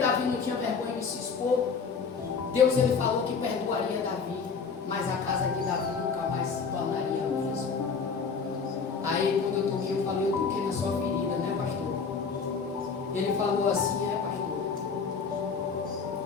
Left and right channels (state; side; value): quieter; right; 5.4 dB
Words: não tinha vergonha de se expor? Deus ele falou que perdoaria Davi, mas a casa de Davi nunca mais se tornaria a mesma. Aí quando eu toquei, eu falei: eu toquei na sua ferida, né, pastor? Ele falou assim: é, pastor,